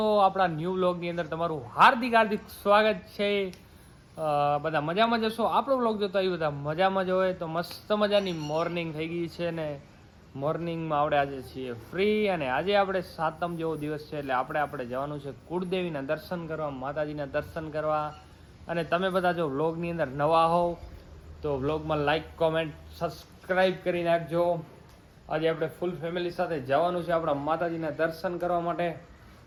આપણા ન્યૂ વ્લોગની અંદર તમારું હાર્દિક હાર્દિક સ્વાગત છે. બધા મજામાં જશો? આપણો વ્લોગ જોતા એ બધા મજામાં જ હોય તો મસ્ત મજાની મોર્નિંગ થઈ ગઈ છે ને મોર્નિંગમાં આપણે આજે છીએ ફ્રી અને આજે આપણે સાતમ જેવો દિવસ છે એટલે આપણે જવાનું છે કુળદેવીના દર્શન કરવા, માતાજીના દર્શન કરવા. અને તમે બધા જો વ્લોગની અંદર નવા હોવ તો વ્લોગમાં લાઈક, કોમેન્ટ, સબસ્ક્રાઈબ કરી નાખજો. આજે આપણે ફૂલ ફેમિલી સાથે જવાનું છે આપણા માતાજીના દર્શન કરવા માટે,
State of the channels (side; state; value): both; identical; correlation 1.00